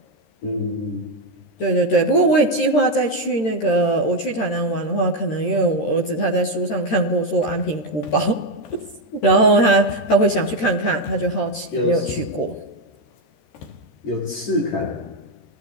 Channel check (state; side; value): late; right; 13 ms